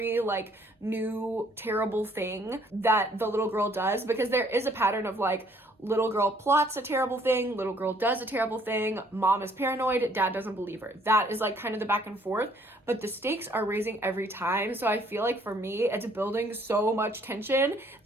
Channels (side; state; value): both; normal; correlation 0.63